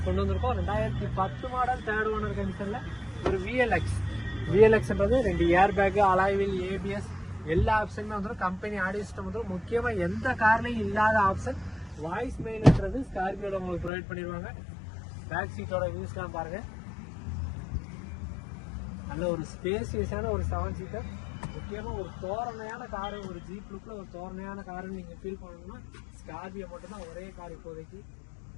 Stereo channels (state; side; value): drops out; right; at 13.9 s